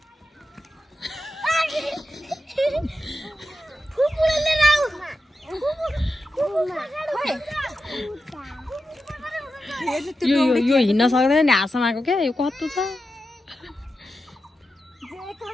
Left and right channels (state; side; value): normal; both; correlation 0.90